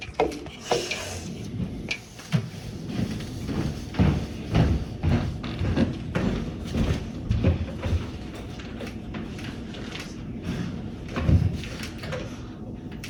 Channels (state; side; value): identical; both; correlation 1.00